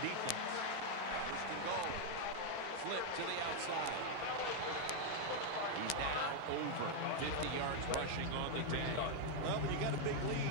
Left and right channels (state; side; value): different; both; correlation 0.00